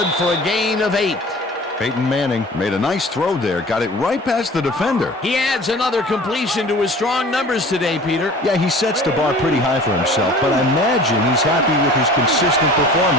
for a gain of 8. Peyton Manning made a nice throw there, got it right past the defender. He adds another completion to his strong numbers today, Peter. Yeah, he sets the bar pretty high for himself, but I imagine he's happy with his consistent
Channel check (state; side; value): normal; both; correlation 0.44